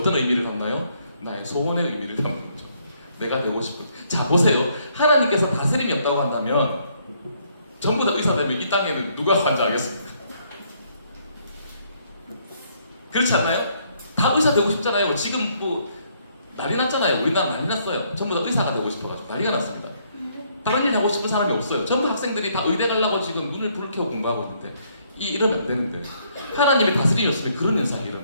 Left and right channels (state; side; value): inverted; both; correlation -0.69